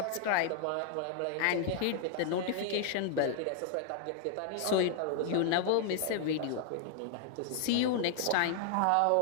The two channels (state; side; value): different; both; correlation 0.00